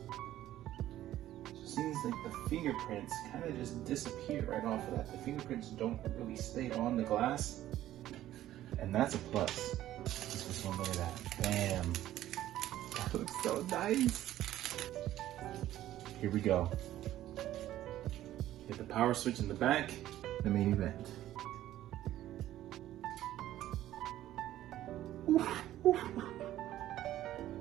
It seems like the fingerprints kind of just disappear right off of that. The fingerprints don't really stay on the glass, and that's a plus. Just one look at that. Bam. That looks so nice. Here we go. Hit the power switch in the back, the main event.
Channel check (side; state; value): left; quieter; 13.5 dB